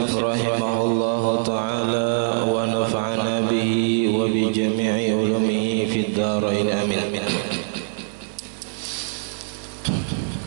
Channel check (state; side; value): silent; left; digital silence